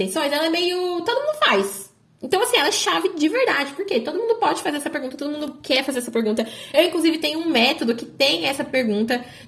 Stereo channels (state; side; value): identical; both; correlation 1.00